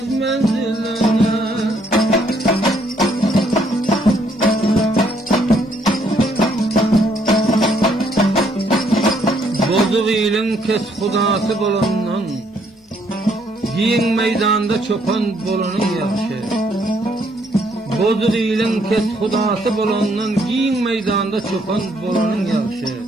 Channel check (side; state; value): both; normal; correlation 0.69